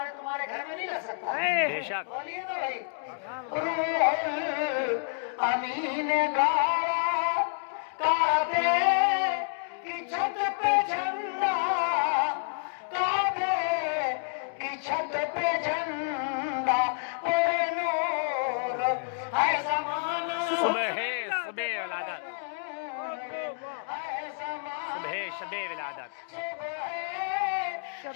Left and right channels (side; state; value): right; silent; digital silence